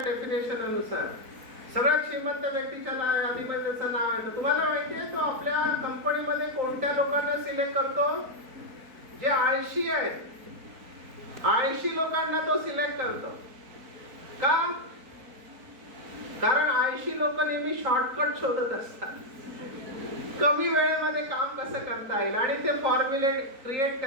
अनुसार. सगळ्यात श्रीमंत व्यक्तीच्या यादीमध्ये नाव आहे. तुम्हाला माहिती आहे तो आपल्या कंपनीमध्ये कोणत्या लोकांना सिलेक्ट करतो? जे आळशी आहेत, आळशी लोकांना तो सिलेक्ट करतो. का? कारण आळशी लोक नेहमी शॉर्टकट शोधत असतात, कमी वेळेमध्ये काम कसं करता येईल, आणि ते फॉर्म्युले क्रिएट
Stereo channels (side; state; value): left; late; 4.2 ms